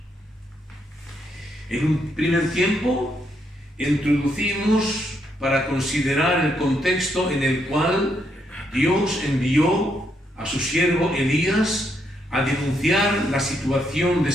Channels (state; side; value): normal; both; correlation 0.76